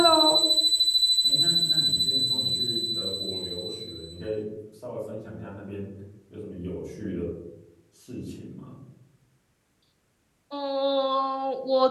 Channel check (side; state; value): both; identical; correlation 1.00